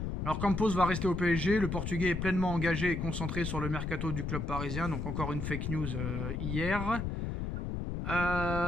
Alors Campos va rester au PSG, le Portugais est pleinement engagé et concentré sur le mercato du club parisien, donc encore une fake news hier.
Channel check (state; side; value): noise; left; rumble, 3 dB below the sound